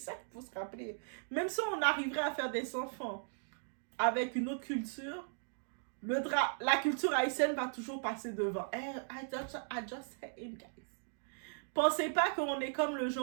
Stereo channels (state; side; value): silent; left; digital silence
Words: il faut se rappeler. Même si on arriverait à faire des enfants avec une autre culture, La culture haïtienne va toujours passer devant. I just say it, guys. Pensez pas qu'on est comme le